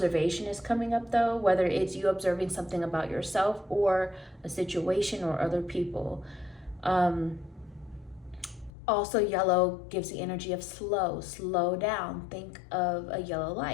is coming up though, whether it's you observing something about yourself or a situation or other people. Also, yellow gives the energy of slow down. Think of a yellow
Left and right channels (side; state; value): right; drops out; at 8.7 s